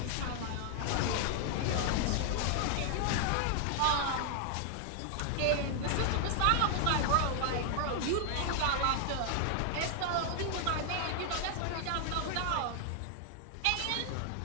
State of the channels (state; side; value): different; both; correlation 0.00